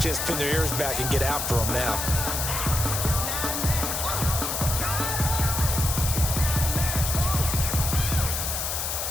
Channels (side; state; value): left; noise; hiss, 2 dB below the sound